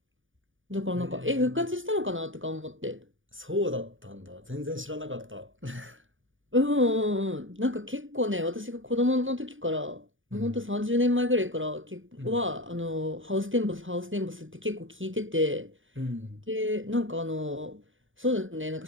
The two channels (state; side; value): late; left; 0.57 ms